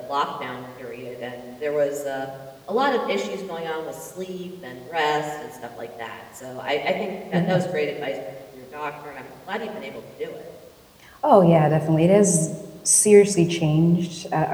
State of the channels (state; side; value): identical; both; correlation 1.00